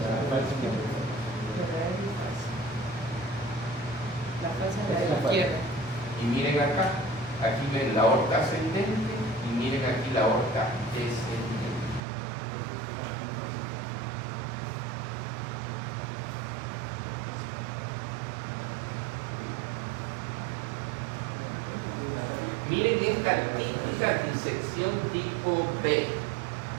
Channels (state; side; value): drops out; left; at 12.0 s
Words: de la izquierda. Y miren acá, aquí ven la aorta ascendente y miren aquí la aorta descendente. Miren esta típica disección tipo B.